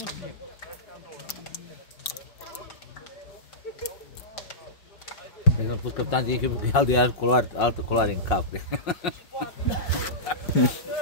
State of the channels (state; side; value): late; right; 5.5 ms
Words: Cred că am pus capitan de echipă că altă culoare în cap.